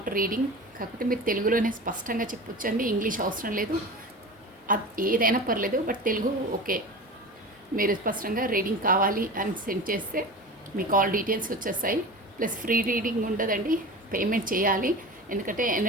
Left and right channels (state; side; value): normal; both; correlation 0.32